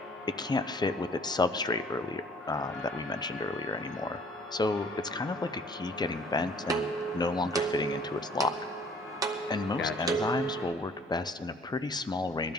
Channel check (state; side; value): normal; both; correlation 0.55